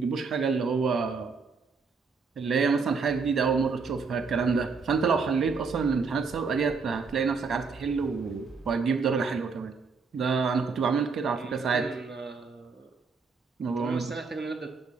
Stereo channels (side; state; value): left; quieter; 4.9 dB